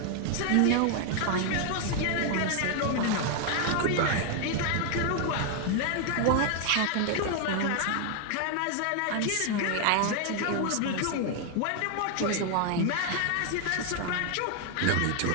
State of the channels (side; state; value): both; different; correlation 0.00